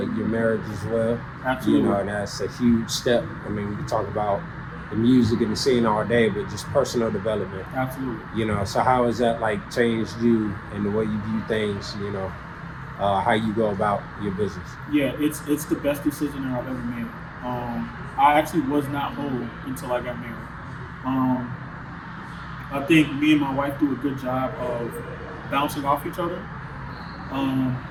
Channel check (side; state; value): both; identical; correlation 1.00